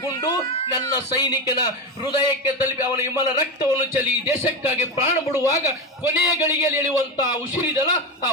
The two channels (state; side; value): normal; both; correlation 0.16